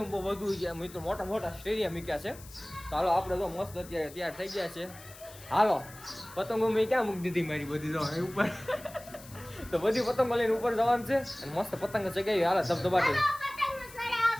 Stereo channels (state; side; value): noise; left; hiss, 19 dB below the sound